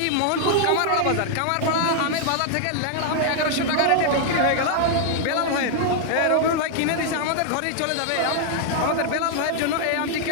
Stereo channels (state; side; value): different; both; correlation 0.00